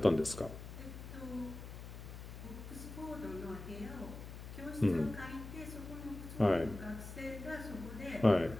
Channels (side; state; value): left; noise; hum, 11 dB below the sound